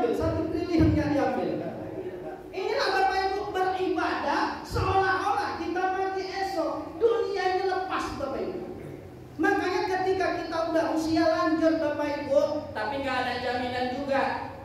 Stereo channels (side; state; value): both; identical; correlation 1.00